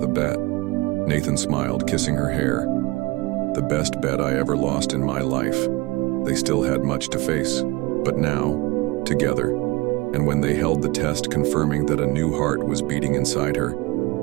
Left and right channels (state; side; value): quieter; left; 22.5 dB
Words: a bet?" Nathan smiled, kissing her hair. "The best bet I ever lost in my life." They still had much to face, but now, together, and when they held the test confirming that a new heart was beating inside her,